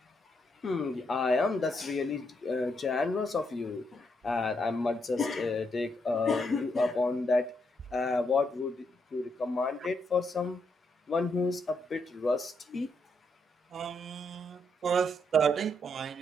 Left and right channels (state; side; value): normal; both; correlation 0.78